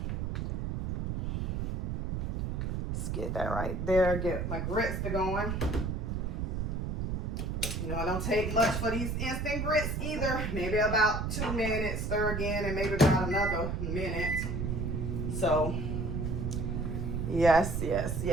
Let's get that right there. Get my grits to going. You know, it don't take much for these instant grits either. Maybe about 2 minutes, stir again, and maybe about another minute. So, yes, yes,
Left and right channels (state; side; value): noise; right; rumble, 1 dB below the sound